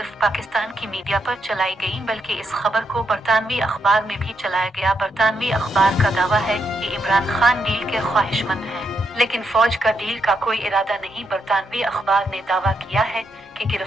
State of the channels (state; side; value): normal; both; correlation 0.81